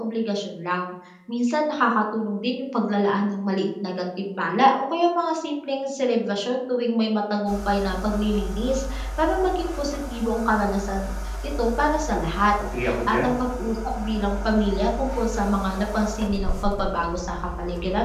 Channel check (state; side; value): identical; both; correlation 1.00